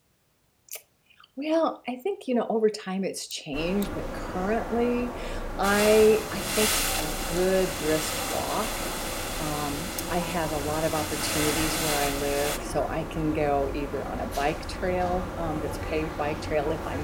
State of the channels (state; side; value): identical; both; correlation 1.00